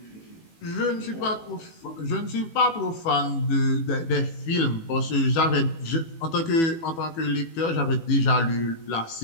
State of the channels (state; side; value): late; right; 18 ms